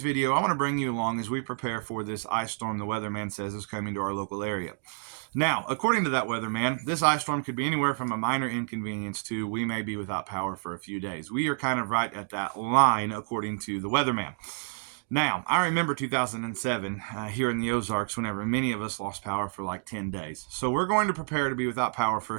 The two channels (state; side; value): silent; left; 59 dB below the other